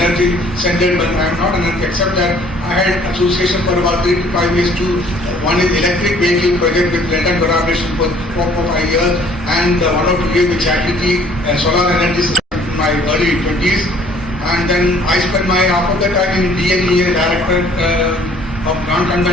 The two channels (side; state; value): both; normal; correlation 0.57